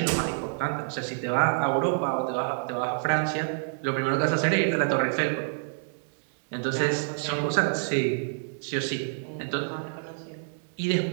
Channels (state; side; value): silent; left; digital silence